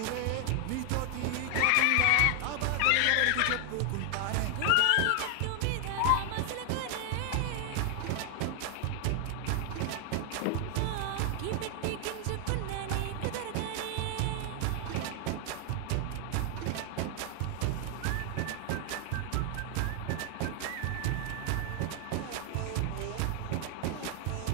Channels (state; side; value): different; both; correlation 0.00